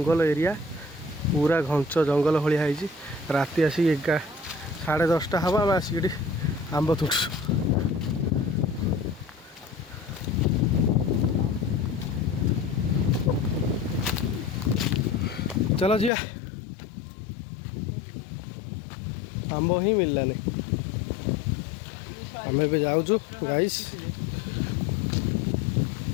एरिया पूरा घंच जंगल भाया है राति आसिक 10:30 हम आम आसिक आंब तुटू चलो जी आंब ही मिललानी आम ए जाऊँ गाइस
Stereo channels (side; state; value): right; drops out; at 16.1 s